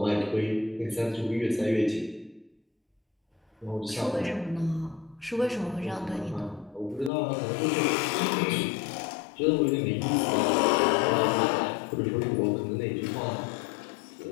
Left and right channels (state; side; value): drops out; right; at 7.1 s